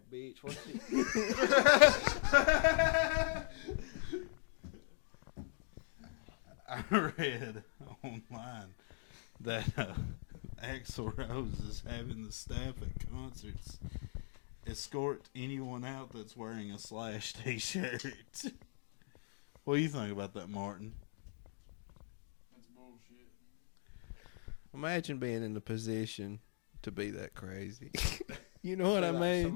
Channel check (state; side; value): silent; right; digital silence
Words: bitch. What's it? I read online that Axl Rose is having the staff at concerts escort anyone out that's wearing a Slash t-shirt. What do you think about that, Martin? That's bullshit. Imagine being in the position to be that crazy. You know what I Like